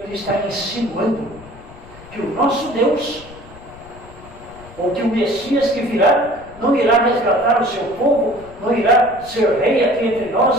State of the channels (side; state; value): left; noise; rumble, 20 dB below the sound